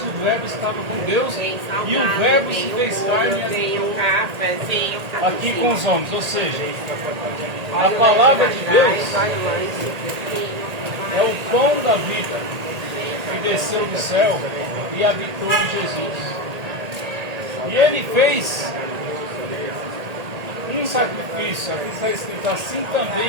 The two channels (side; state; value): left; late; 1.8 ms